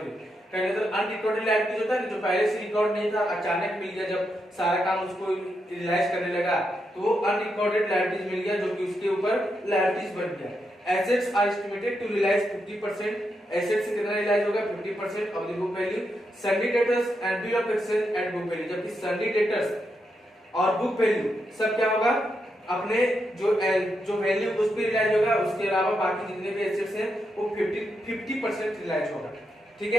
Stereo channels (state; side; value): normal; both; correlation 0.83